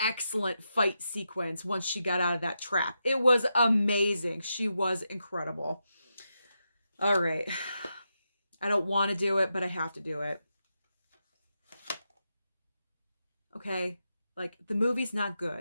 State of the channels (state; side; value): inverted; both; correlation -0.86